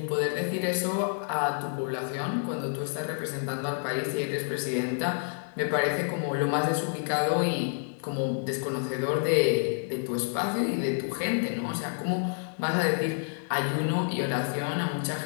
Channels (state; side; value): silent; right; digital silence